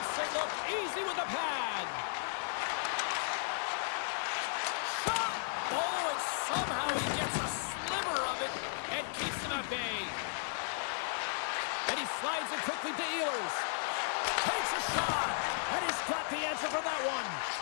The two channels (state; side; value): silent; right; digital silence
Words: it look easy with the pad. Shot. Oh, and somehow he gets a sliver of it and keeps him at bay. And he slides it quickly to Ehlers. Takes a shot. And he's got the answer for that one.